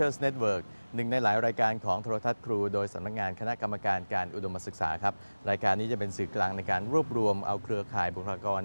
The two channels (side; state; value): both; inverted; correlation -1.00